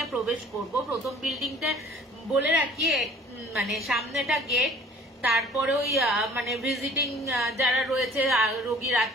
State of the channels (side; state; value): both; normal; correlation 0.51